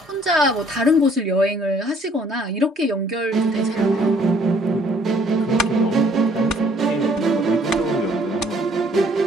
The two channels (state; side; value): normal; both; correlation 0.61